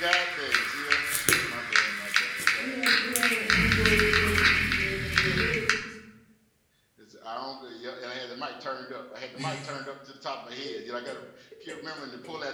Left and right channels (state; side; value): identical; both; correlation 1.00